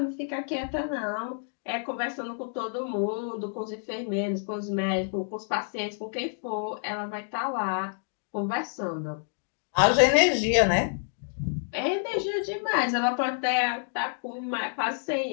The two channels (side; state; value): right; silent; digital silence